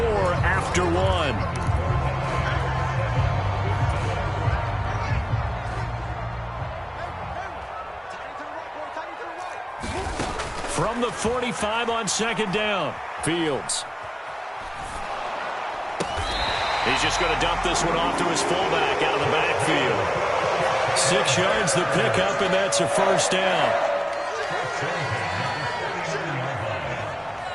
after 1. From the 45 on 2nd down. Fields. He's just going to dump this one off to his fullback out of the backfield. 6 yards the pickup, and that's a 1st down.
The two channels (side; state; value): both; identical; correlation 1.00